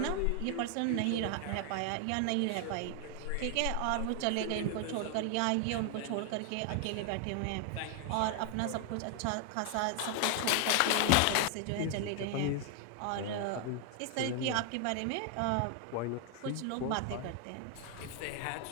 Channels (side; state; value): both; different; correlation 0.00